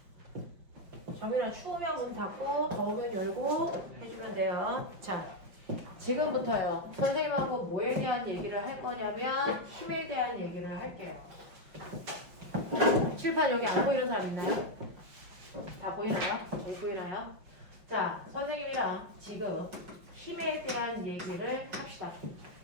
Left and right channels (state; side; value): late; left; 5.7 ms